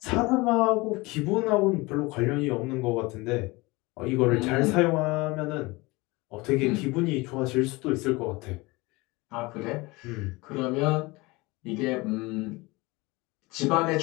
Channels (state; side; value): quieter; right; 23.4 dB